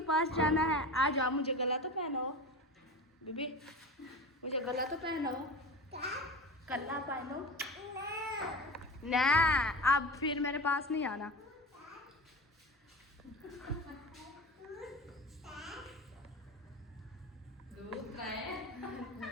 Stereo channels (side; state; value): both; normal; correlation 0.30